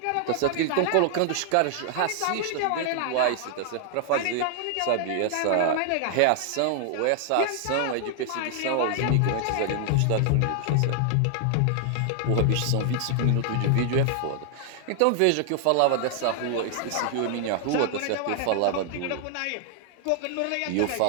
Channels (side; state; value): both; different; correlation 0.00